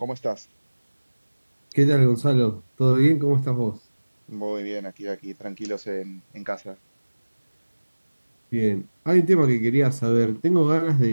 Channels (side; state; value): both; inverted; correlation -1.00